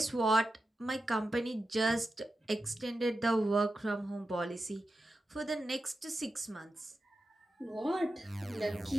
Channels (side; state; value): both; normal; correlation 0.91